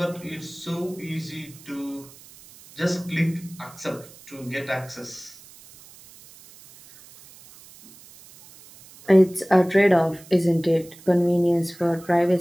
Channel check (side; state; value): right; noise; hiss, 22 dB below the sound